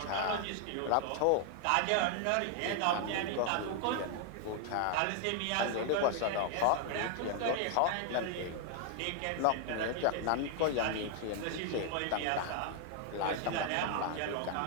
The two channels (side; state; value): both; different; correlation 0.00